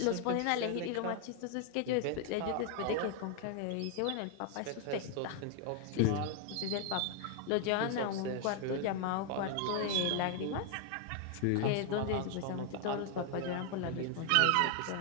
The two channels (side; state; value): both; different; correlation 0.00